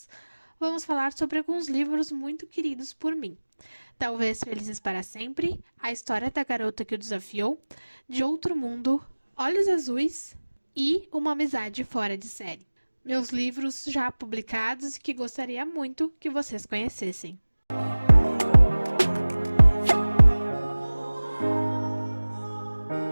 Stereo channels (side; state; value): both; inverted; correlation -1.00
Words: vamos falar sobre alguns livros muito queridos por mim. Talvez Felizes para Sempre, A História da Garota que o Desafiou, De Outro Mundo, Olhos Azuis e Uma Amizade Fora de Série. Meus livros já publicados e que gostaria muito que vocês conhecessem.